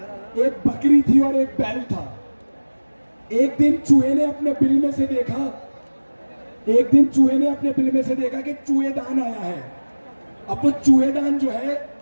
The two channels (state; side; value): inverted; both; correlation -1.00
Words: एक बकरी थी और एक बैल था। एक दिन चूहे ने अपने बिल में से देखा कि चूहेदान आया है। अब वो चूहेदान जो है